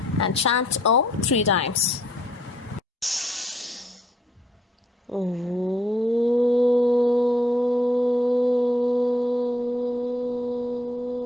and chant Om 3 times.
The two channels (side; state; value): both; normal; correlation 0.67